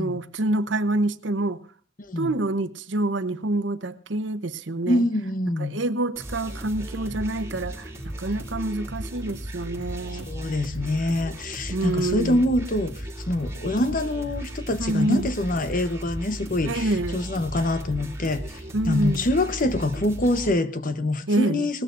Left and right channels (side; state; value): both; normal; correlation 0.61